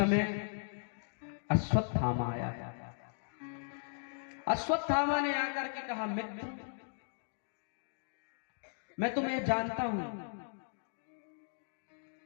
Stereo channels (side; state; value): right; silent; digital silence